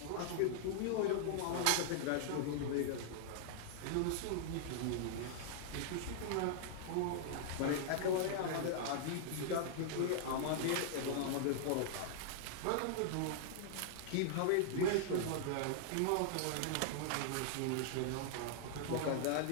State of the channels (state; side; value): different; both; correlation -0.01